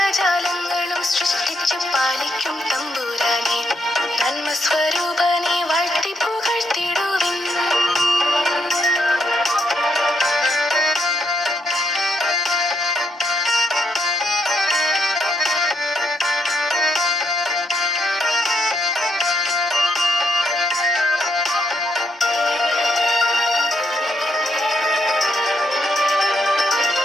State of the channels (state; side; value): normal; both; correlation 0.76